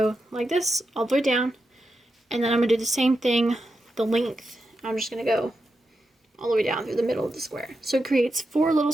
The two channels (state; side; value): normal; both; correlation 0.88